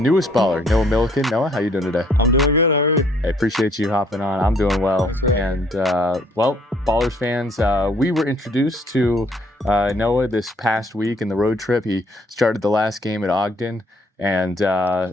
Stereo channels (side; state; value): both; normal; correlation 0.64